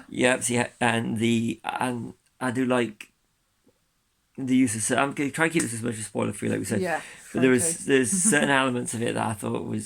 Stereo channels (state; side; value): identical; both; correlation 1.00